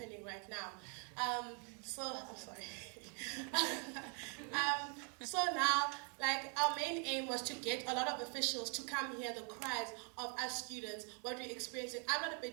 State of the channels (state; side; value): quieter; left; 39.5 dB